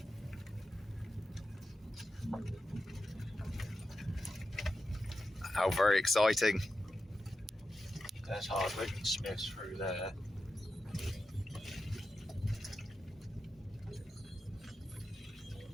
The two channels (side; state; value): both; normal; correlation 0.90